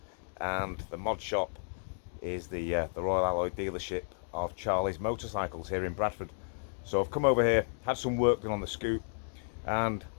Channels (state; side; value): silent; right; digital silence